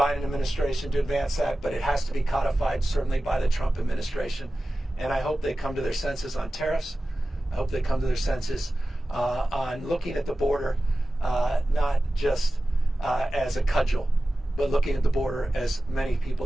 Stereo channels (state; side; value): normal; both; correlation 0.95